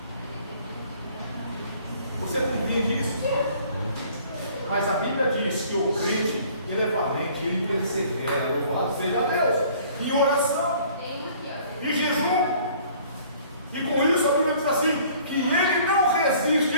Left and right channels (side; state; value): both; inverted; correlation -0.54